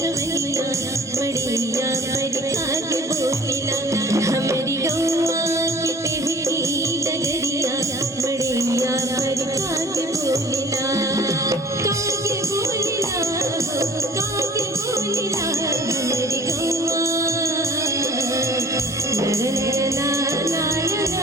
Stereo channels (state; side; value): normal; both; correlation 0.48